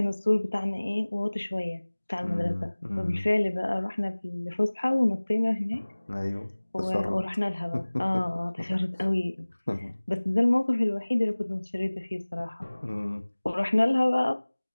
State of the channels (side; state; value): both; inverted; correlation -1.00